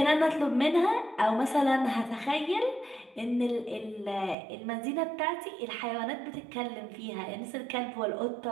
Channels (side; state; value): left; drops out; at 4.4 s